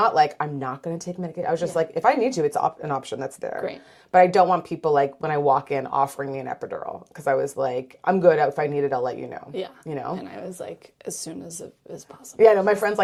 like, I'm not going to take medication. I was just like, if I need to, it's an option that's there. Great. But I don't want people like when I walk in offering me an epidural because I was like, I'm good. If I need it, I'll let you know. Yeah. You know? And I was like, as soon as possible. Yeah, no, my friend's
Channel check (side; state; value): both; identical; correlation 1.00